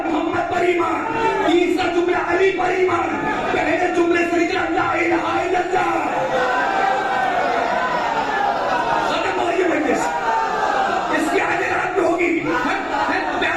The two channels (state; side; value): identical; both; correlation 1.00